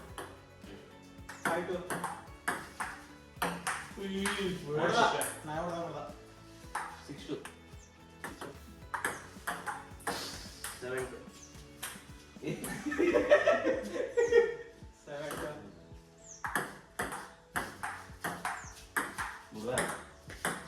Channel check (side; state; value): both; identical; correlation 1.00